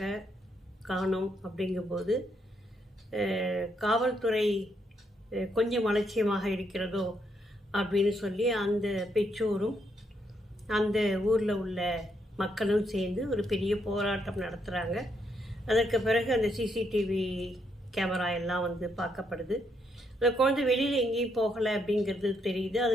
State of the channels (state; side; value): normal; both; correlation 0.76